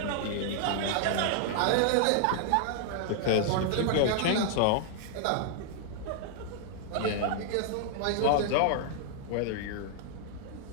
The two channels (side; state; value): both; different; correlation -0.01